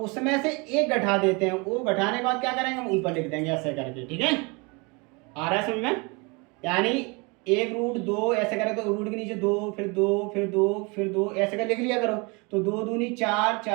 उसमें से एक घटा देते हैं, वो घटाने के बाद क्या करेंगे, हम ऊपर लिख देंगे ऐसे करके, ठीक है, आ रहा है समझ में, यानी 1 √2 ऐसे करें तो रूट के नीचे 2 फिर 2 फिर 2 फिर 2 ऐसे कर लिख लिया करो। तो 2 दूनी 4,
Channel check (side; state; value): left; quieter; 29.0 dB